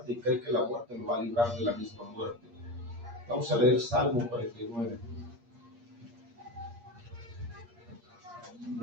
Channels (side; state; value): left; late; 8.5 ms